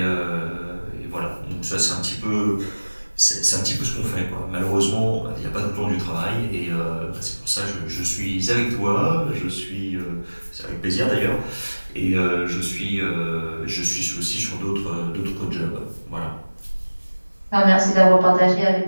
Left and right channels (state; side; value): inverted; both; correlation -1.00